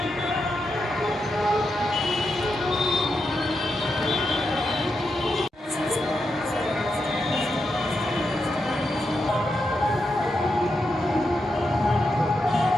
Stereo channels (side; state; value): both; normal; correlation 0.86